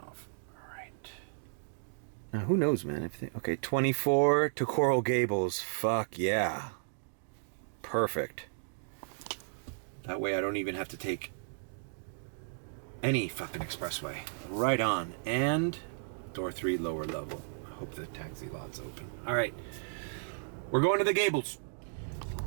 off. All right. Now, who knows, man? Okay, 24 to Coral Gables. Fuck yeah. Perfect. That way I don't even have to take any fucking expressway. Right on. And door 3, lower level. I hope the taxi lot's open. All right. We're going to the Gables.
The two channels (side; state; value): left; silent; digital silence